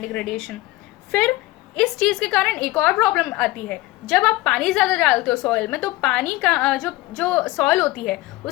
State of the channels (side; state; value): right; quieter; 18.8 dB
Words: डिग्रेडेशन। फिर इस चीज़ के कारण एक और प्रॉब्लम आती है, जब आप पानी ज़्यादा डालते हो सॉइल में तो पानी का जो सॉइल होती है